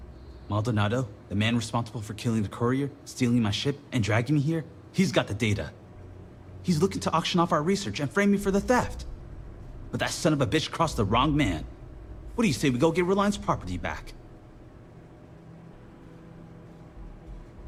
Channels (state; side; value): identical; both; correlation 1.00